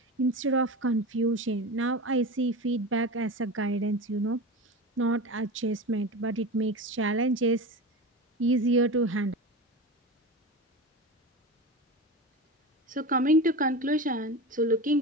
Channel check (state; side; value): normal; both; correlation 0.27